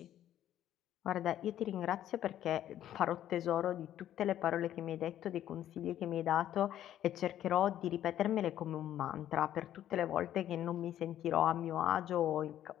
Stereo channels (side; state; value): right; quieter; 11.7 dB